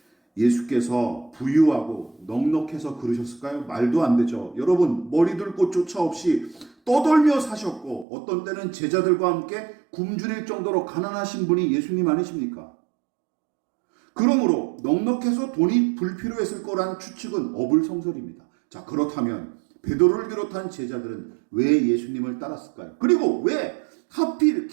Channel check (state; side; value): drops out; left; at 8.1 s